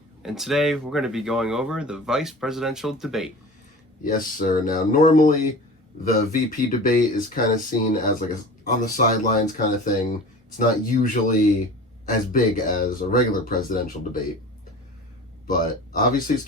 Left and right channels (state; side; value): normal; both; correlation 0.38